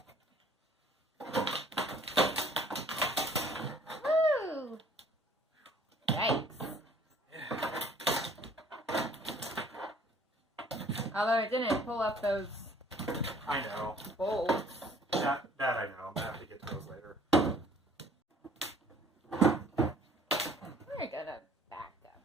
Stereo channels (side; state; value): both; normal; correlation 0.56